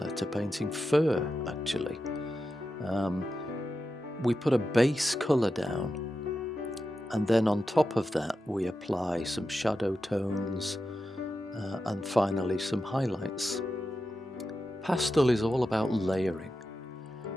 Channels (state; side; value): normal; both; correlation 0.90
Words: to painting fur, actually. we put a base colour down, and then on top of that we apply some shadow tones and finally some highlights. Pastel is all about layering,